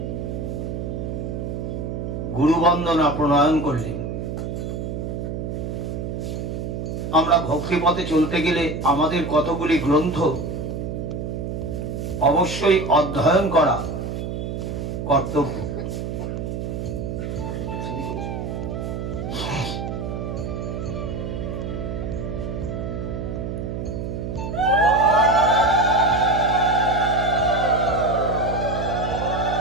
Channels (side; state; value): right; noise; hum, 4 dB below the sound